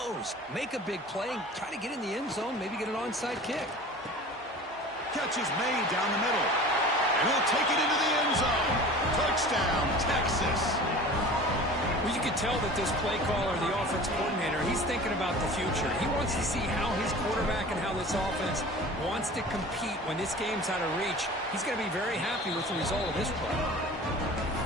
Make a big play, try to get in the end zone, maybe get an onside kick. Catch is made down the middle. And he'll take it into the end zone. Touchdown, Texas. Well, you could tell that this play caller, the offense coordinator, he's thinking about the future. He wants to see how his quarterback and how this offense wants to compete when this game's out of reach. He's going to be very happy with the result of this play.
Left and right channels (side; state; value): both; normal; correlation 0.40